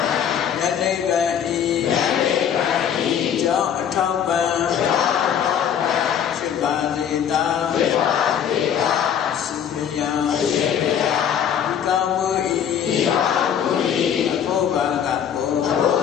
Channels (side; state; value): right; quieter; 8.7 dB